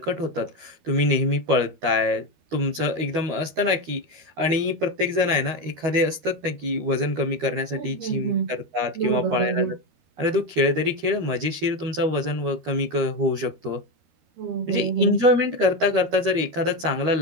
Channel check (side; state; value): left; late; 12 ms